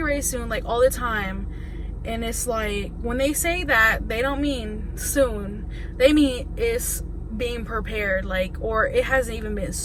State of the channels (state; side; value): identical; both; correlation 1.00